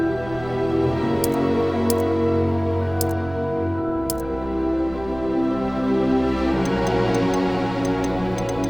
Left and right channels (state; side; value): noise; right; rumble, 16 dB below the sound